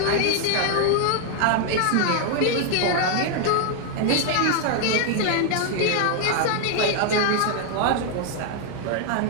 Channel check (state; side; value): different; both; correlation 0.00